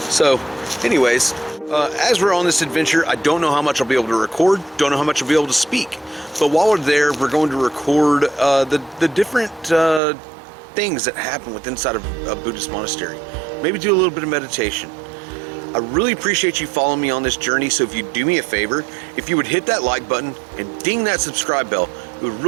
So, anyways, as we're on this adventure, I don't know how much I'll be able to record, don't know how much I'll be able to speak. But while we're there, we're going to record the different things that happen within inside of a Buddhist monastery. Maybe do a little bit of meditation. I really appreciate you following me on this journey, so if you do me a favor, if you would hit that like button and ding that subscribe bell, it would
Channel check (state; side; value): drops out; left; at 10.0 s